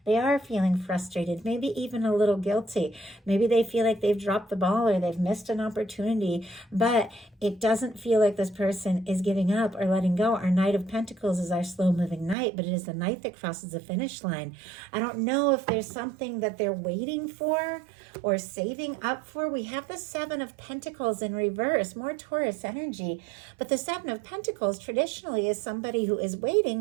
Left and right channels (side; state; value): left; drops out; at 12.4 s